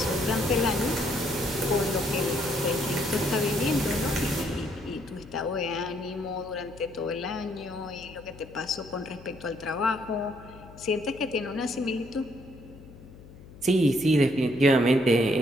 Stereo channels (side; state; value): left; noise; hum, 19 dB below the sound